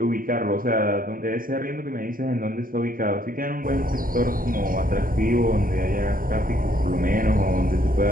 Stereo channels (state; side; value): late; left; 0.41 ms